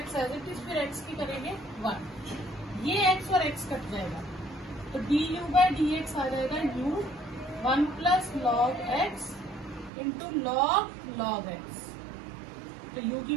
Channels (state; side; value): drops out; left; at 9.9 s